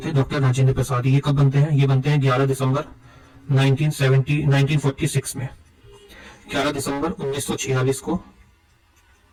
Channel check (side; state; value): both; identical; correlation 1.00